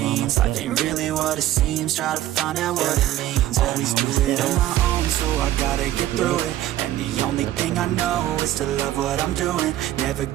Life ain't really what it seems, try to find out what it means. Always do it on my own, so I gotta get through it. And the only thing I know is to love what I'm doing. Never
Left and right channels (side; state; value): left; quieter; 13.5 dB